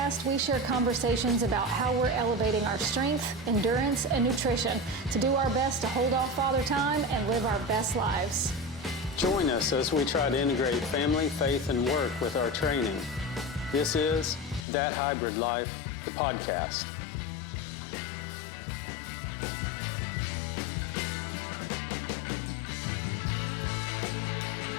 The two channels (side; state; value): right; drops out; at 14.7 s